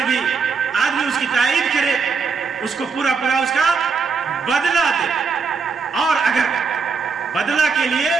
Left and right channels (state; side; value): quieter; left; 5.1 dB